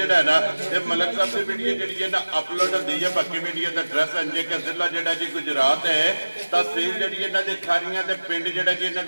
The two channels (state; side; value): inverted; both; correlation -1.00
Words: है ना ये मलक साहब की वीडियो जी है ना अपलोड होती है। बाकी वीडियो का एड्रैस अंजे के जिला जोड़ा जी गुजरात है, तहसील जी इन्हों की खारियां के पिंड जोड़ा जी इन्हों